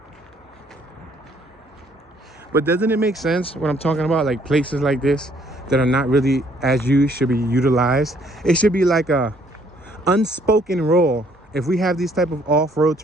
But doesn't it make sense when I'm talking about like places like this that are not really as used should be utilized? It should be like a unspoken rule. If we have these type of off-road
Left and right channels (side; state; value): both; normal; correlation 0.64